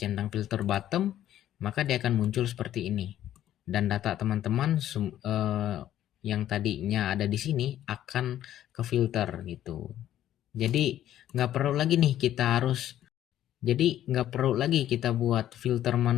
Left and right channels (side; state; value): right; quieter; 12.0 dB